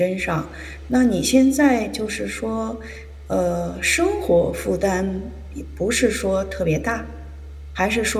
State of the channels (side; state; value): both; identical; correlation 1.00